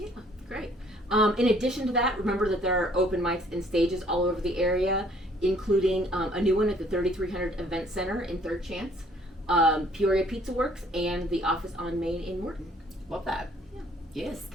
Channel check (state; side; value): normal; both; correlation 0.60